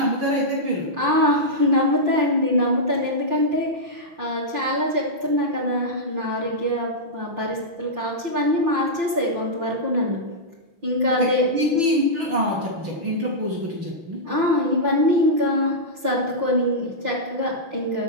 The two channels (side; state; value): left; late; 5.8 ms